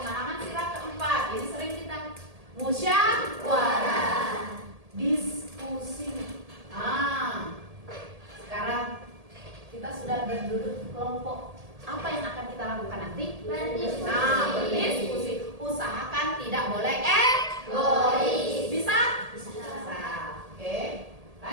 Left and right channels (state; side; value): late; left; 1.8 ms